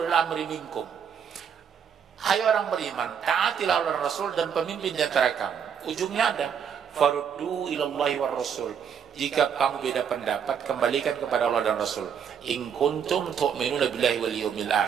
amri minkum. Hai orang beriman, taatilah Allah Rasul dan pemimpin di antara kamu. Ujungnya ada, faruddu ilallahi war rasul. Jika kamu beda pendapat, kembalikan kepada Allah dan Rasul. In kuntum tu'minuna billahi wal yawmil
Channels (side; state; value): left; quieter; 7.6 dB